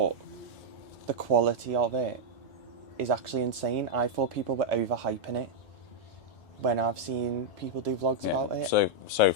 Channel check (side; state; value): both; normal; correlation -0.03